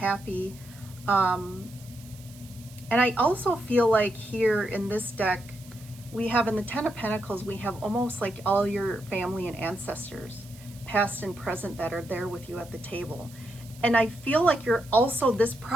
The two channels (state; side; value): noise; right; hiss, 22 dB below the sound